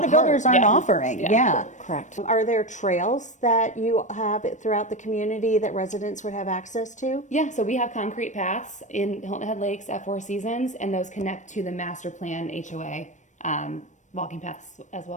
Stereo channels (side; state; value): right; late; 0.35 ms